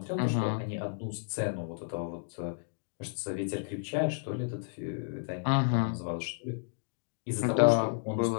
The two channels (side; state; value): right; silent; digital silence